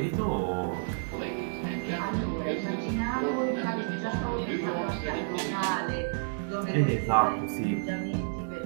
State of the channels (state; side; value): silent; left; digital silence